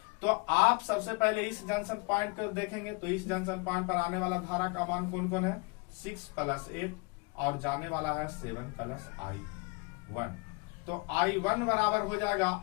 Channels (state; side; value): quieter; right; 29.9 dB